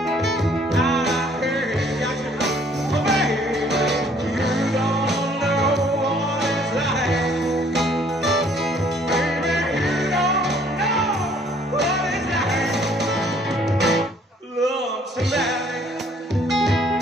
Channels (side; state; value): both; normal; correlation 0.61